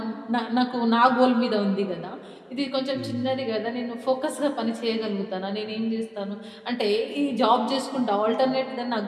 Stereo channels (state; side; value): identical; both; correlation 1.00